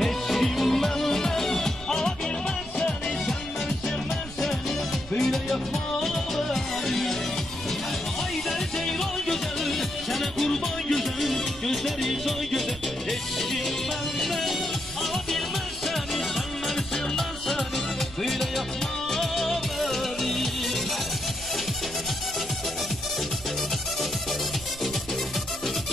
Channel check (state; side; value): noise; right; rumble, 15 dB below the sound